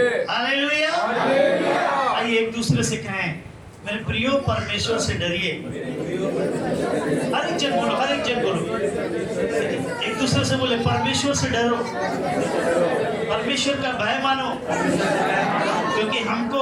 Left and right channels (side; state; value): both; identical; correlation 1.00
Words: हालेलुया। आइए एक दूसरे से कहें, मेरे प्रियो परमेश्वर से डरिए। हर एक जन बोलो, हर एक जन बोलो, एक दूसरे से बोले परमेश्वर से डरो, परमेश्वर का भय मानो, क्योंकि हमको